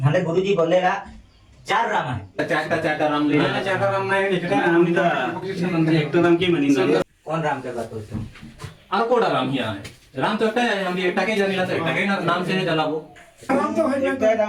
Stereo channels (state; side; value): identical; both; correlation 1.00